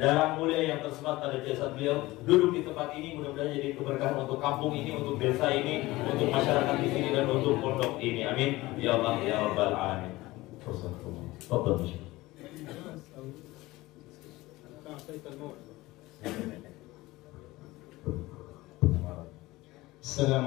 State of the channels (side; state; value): right; quieter; 19.4 dB